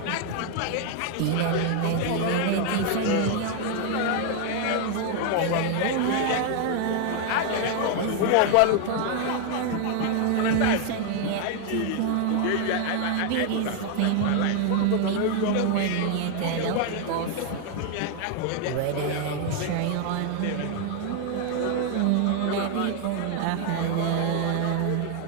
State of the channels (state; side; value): different; both; correlation 0.00